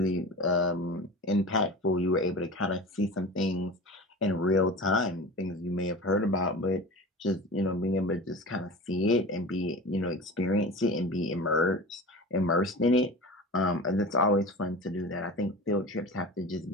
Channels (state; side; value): normal; both; correlation 0.33